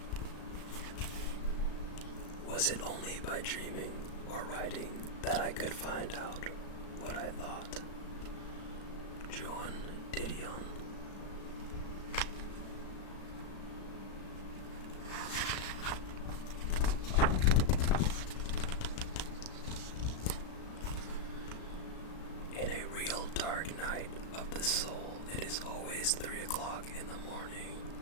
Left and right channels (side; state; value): right; late; 36 ms